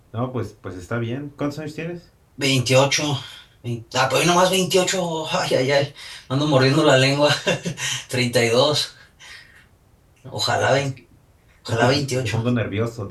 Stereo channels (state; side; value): identical; both; correlation 1.00